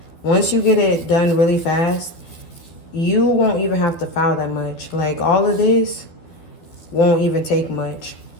Once you get it done really fast, you won't even have to file that much. Like all of this won't even take much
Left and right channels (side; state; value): right; late; 12 ms